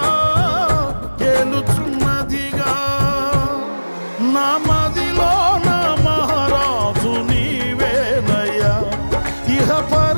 ఏలుచున్నదిగా నా మదిలో నా మహారాజు నీవేనయ్యా ఇహ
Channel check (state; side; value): inverted; both; correlation -1.00